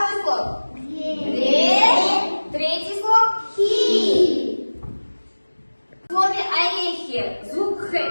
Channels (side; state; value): both; inverted; correlation -1.00